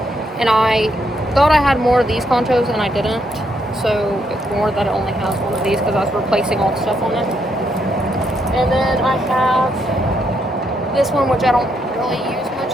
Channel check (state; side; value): normal; both; correlation 0.76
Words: And I thought I had more of these ponchos, and I didn't. So it's more that it only has one of these because I was replacing all the stuff on it. And then I have this one, which I don't really use much